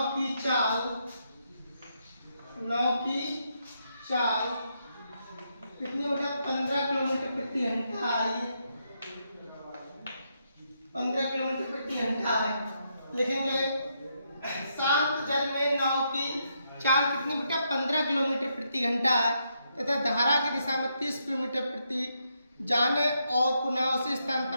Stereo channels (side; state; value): both; inverted; correlation -0.79